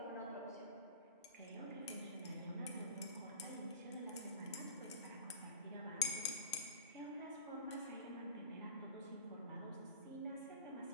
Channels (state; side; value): inverted; both; correlation -0.33